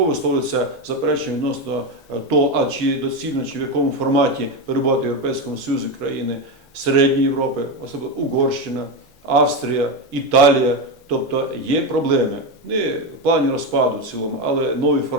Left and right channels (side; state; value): both; normal; correlation 0.13